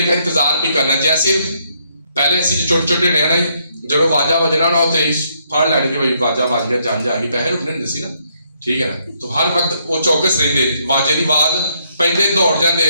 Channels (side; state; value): both; inverted; correlation -0.73